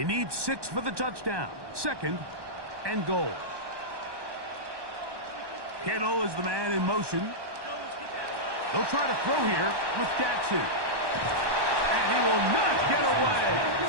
need 6 for the touchdown. 2nd and goal. Kittle is the man in motion. They'll try to throw here with Jackson. And he will not get away.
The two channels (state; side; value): late; left; 1.2 ms